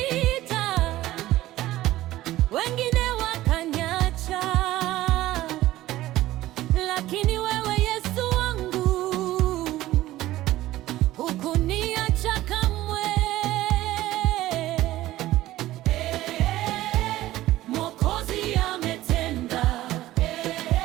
wengine wakaniacha, lakini wewe Yesu wangu hukuniacha kamwe. Mwokozi ametenda,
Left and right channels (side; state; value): left; quieter; 15.7 dB